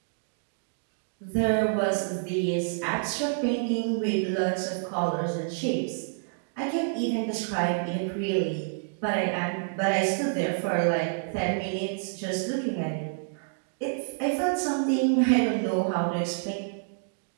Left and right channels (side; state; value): left; silent; digital silence